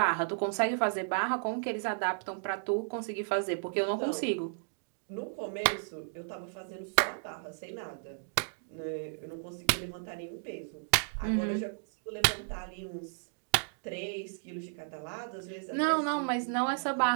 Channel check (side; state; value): left; silent; digital silence